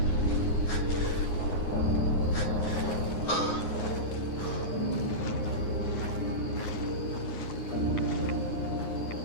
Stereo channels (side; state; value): right; late; 9.6 ms